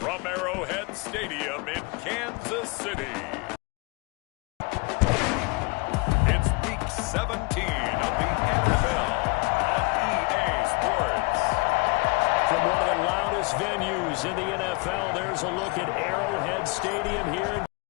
Arrowhead Stadium in Kansas City, it's Week 17 of the NFL on EA Sports. From one of the loudest venues in the NFL, there's a look at Arrowhead Stadium here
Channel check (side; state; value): right; quieter; 27.4 dB